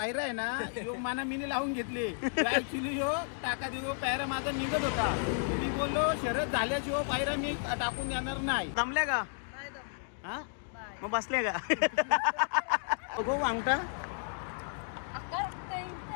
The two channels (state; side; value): silent; right; digital silence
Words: आहे ना योग माना मीने लावून घेतले ऍक्च्युली यो टाका देऊ पायरा माझा निघत होता. मी बोललो शरद झाल्याशिवाय पायरा मी टाकून देणार नाही. जमल्या का हा मग बसले का बघू अंगठा